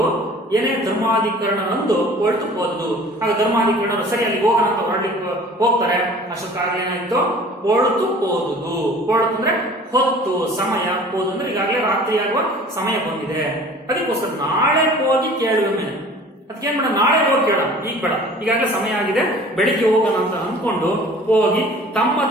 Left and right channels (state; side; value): normal; both; correlation 0.47